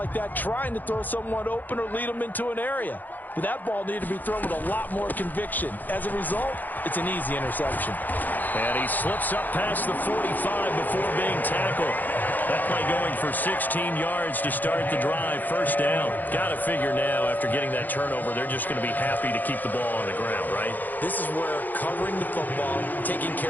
that, trying to throw someone open or lead them into an area. But that ball needed to be thrown with a lot more conviction. As a result, it's an easy interception. And he slips up past the 45 before being tackled. That play going for 16 yards to start the drive. 1st down. Got to figure now, after getting that turnover, they're just going to be happy to keep the ball on the ground, right? This is where covering the football, taking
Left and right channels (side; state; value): right; late; 0.085 ms